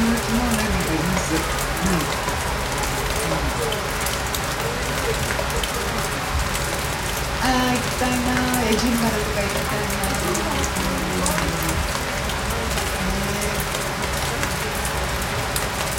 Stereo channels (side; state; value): both; identical; correlation 1.00